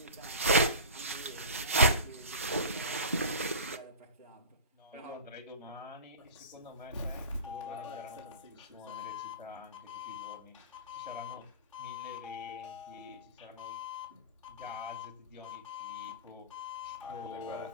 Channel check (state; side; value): inverted; both; correlation -0.34